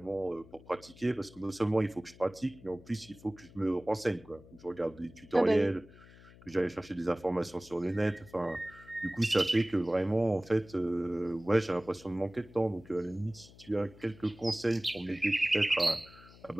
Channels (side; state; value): left; noise; hum, 22 dB below the sound